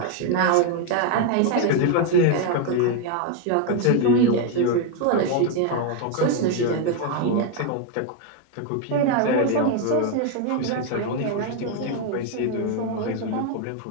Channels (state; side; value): different; both; correlation 0.01